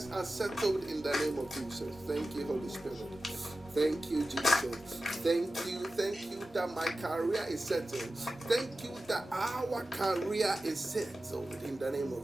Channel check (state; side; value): noise; left; rumble, 28 dB below the sound